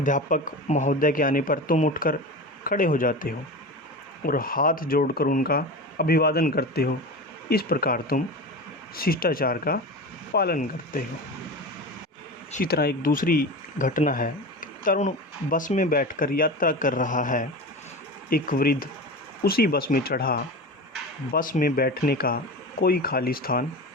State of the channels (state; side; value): normal; both; correlation 0.28